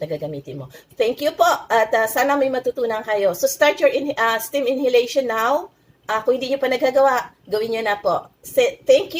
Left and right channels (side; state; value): both; identical; correlation 1.00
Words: gagamitin mo. Thank you po at sana may matutunan kayo. So start your steam inhalation now. Kung hindi nyo pa nagagawa, gawin nyo na po. Thank